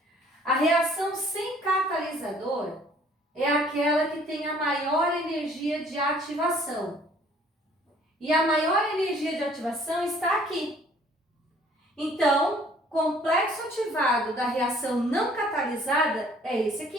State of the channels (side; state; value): both; normal; correlation 0.57